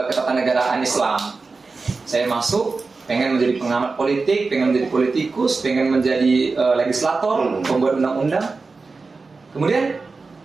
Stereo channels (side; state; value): left; quieter; 4.1 dB